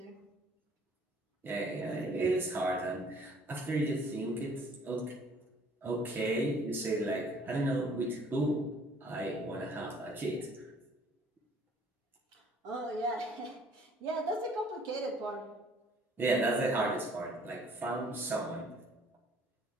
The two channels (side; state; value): both; normal; correlation 0.57